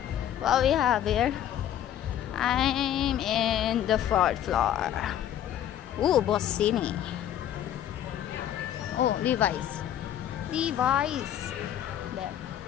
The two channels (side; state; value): right; quieter; 10.9 dB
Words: What we have here? I'm in the fourth floor. Ooh, Bossini. Oh, Levi's. There.